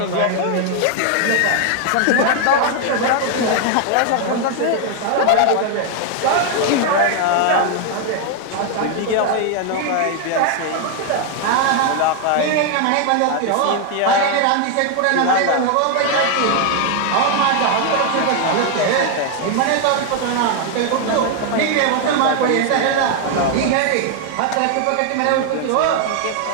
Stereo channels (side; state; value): both; different; correlation 0.01